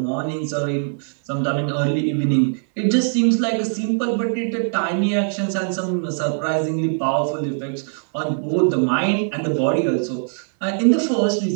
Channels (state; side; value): silent; left; digital silence